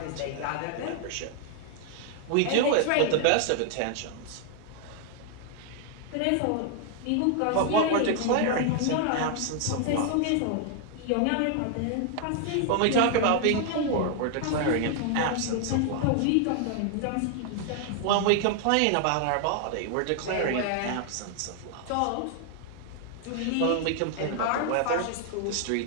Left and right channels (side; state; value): both; different; correlation 0.00